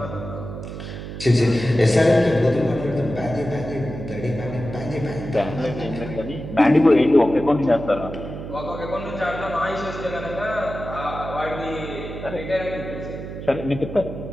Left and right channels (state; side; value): noise; right; hum, 9 dB below the sound